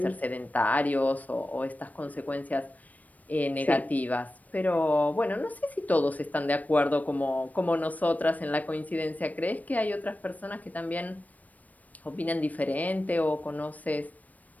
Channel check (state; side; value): late; right; 0.075 ms